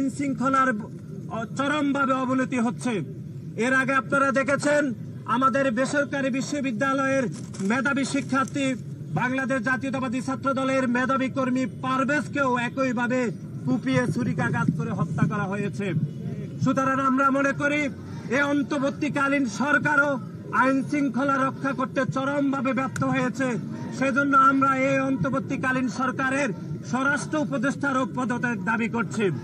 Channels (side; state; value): both; identical; correlation 1.00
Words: শৃঙ্খলার চরমভাবে অবনতি হচ্ছে। এর আগে আপনারা দেখেছেন আমাদের বেসরকারি বিশ্ববিদ্যালয়ের মেধাবী শিক্ষার্থী বাংলাদেশ জাতীয়তাবাদী ছাত্র দলের মেধাবী কর্মী পারভেজকেও একইভাবে কুপিয়ে ছুরিকাঘাত করে হত্যা করা হয়েছে। সুতরাং আমরা মনে করি এই অন্তর্বর্তীকালীন সরকারও আইন শৃঙ্খলা রক্ষা করতে চরমভাবে ব্যর্থ হয়েছে। সেজন্য আমরা এই অন্তর্বর্তীকালীন সরকারের স্বরাষ্ট্র উপদেষ্টারও পদত্যাগ দাবি করছি।